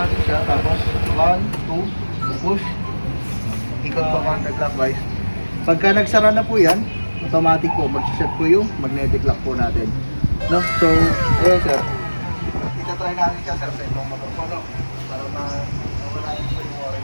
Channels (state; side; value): inverted; both; correlation -1.00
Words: siya. Tapos 1, 2, push. Ikot po counterclockwise. Pagka nagsara na po yan, automatic po, mag-set po yung magnetic lock po natin. No? So, ayan sir. Itatry natin siya sir sa ibang motor po, no? Para mawala yung po yung worry